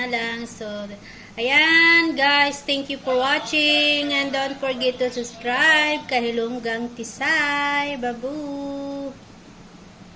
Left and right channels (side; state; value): both; identical; correlation 1.00